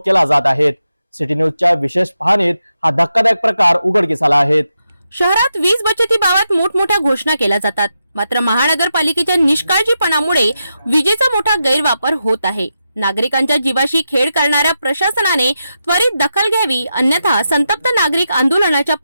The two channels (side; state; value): both; inverted; correlation -0.87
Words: केला जात आहे। सिटी न्यूजच्या विशेष पाहणीत हा धक्कादायक प्रकार उघडकीस आला आहे। शहरात वीज बचतीबाबत मोठमोठ्या घोषणा केल्या जातात, मात्र महानगरपालिकेच्या निष्काळजीपणामुळे विजेचा मोठा गैरवापर होत आहे। नागरिकांच्या जीवाशी खेळ करणाऱ्या प्रशासनाने त्वरित दखल घ्यावी, अन्यथा संतप्त नागरिक आंदोलनाच्या